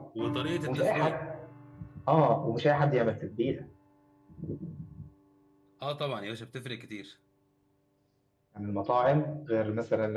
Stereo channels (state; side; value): identical; both; correlation 1.00